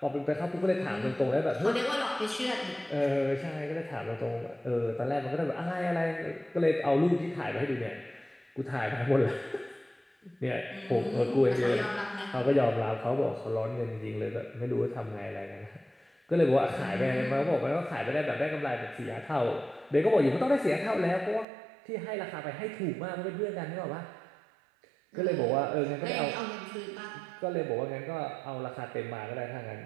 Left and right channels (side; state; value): left; drops out; at 21.5 s